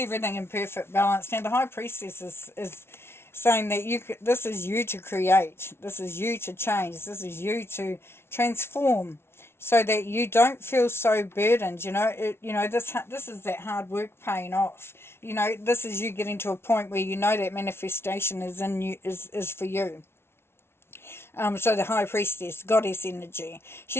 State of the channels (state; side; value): late; right; 0.12 ms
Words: in perfect balance? Now the High Priestess is saying that this is you to create, this is you to change, this is you to transform, so that you don't feel so burdened. This is that hard work paying off. This is you getting to a point where that manifestation is in you, is for you. So the High Priestess, goddess energy.